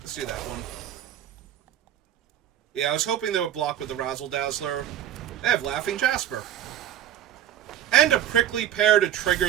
do that one. Yeah, I was hoping they would block with the Razzle Dazzler. They have Laughing Jasper. And a Prickly Pear to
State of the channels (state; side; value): quieter; left; 11.1 dB